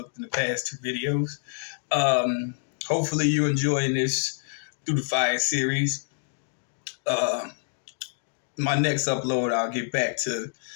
in the past two videos. Hopefully, you're enjoying this Through the Fire series. My next upload, I'll get back to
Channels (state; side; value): silent; right; digital silence